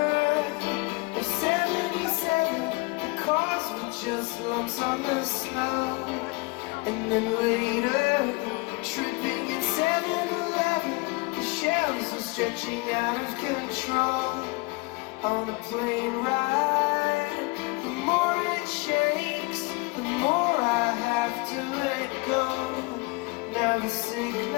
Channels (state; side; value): quieter; right; 26.6 dB